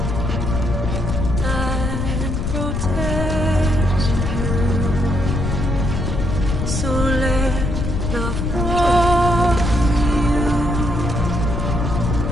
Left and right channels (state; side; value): noise; left; rumble, 1 dB below the sound